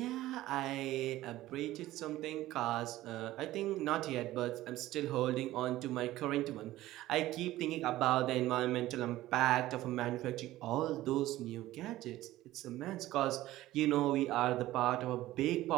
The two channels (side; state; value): left; quieter; 15.9 dB